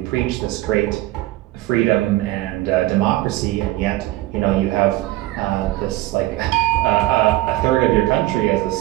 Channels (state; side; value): quieter; left; 17.1 dB